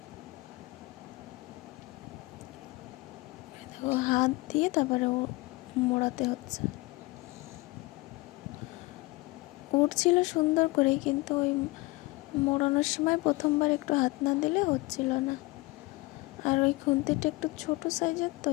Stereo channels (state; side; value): quieter; right; 22.8 dB